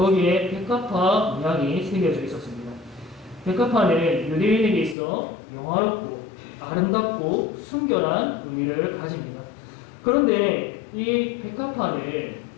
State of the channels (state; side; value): drops out; right; at 5.0 s